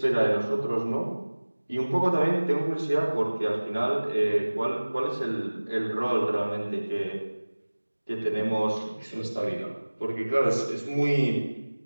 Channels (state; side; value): inverted; both; correlation -1.00